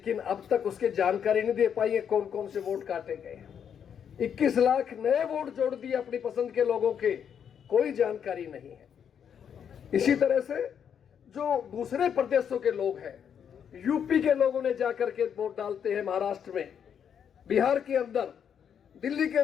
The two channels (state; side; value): quieter; right; 8.1 dB